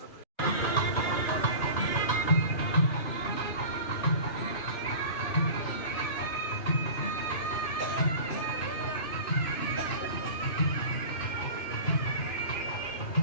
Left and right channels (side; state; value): right; late; 2.5 ms